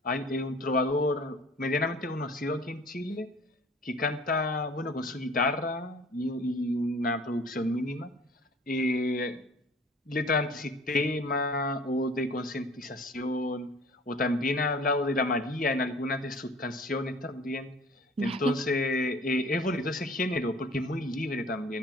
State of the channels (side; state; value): both; normal; correlation 0.49